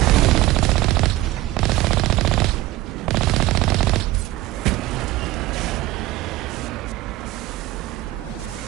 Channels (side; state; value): left; quieter; 17.1 dB